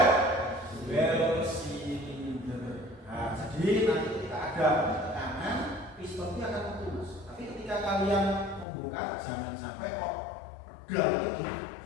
silinder. Nah, jadi nanti ketika ada tekanan, piston itu akan putus. Tapi ketika kalian membuka, jangan sampai kok pedal itu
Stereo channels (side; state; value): right; drops out; at 8.7 s